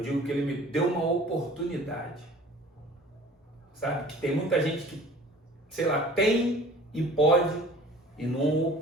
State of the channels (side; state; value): both; normal; correlation 0.46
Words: digo que ele me deu uma oportunidade. Sabe? Que tem muita gente que, sei lá, tem e pode e não